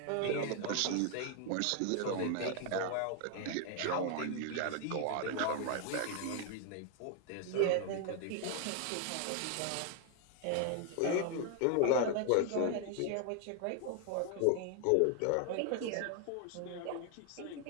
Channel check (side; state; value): both; different; correlation 0.00